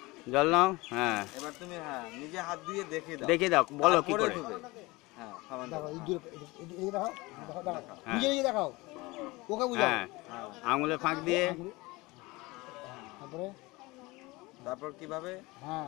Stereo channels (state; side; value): quieter; right; 22.5 dB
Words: জল নাও। হ্যাঁ, এবার তুমি নিজে হাত দিয়ে দেখিয়ে দাও, বলো কি করে। আঙুলে ফাঁক দিয়ে, তারপর কিভাবে?